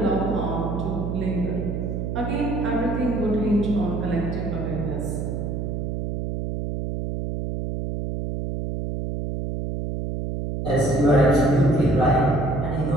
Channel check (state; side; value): noise; right; hum, 3 dB below the sound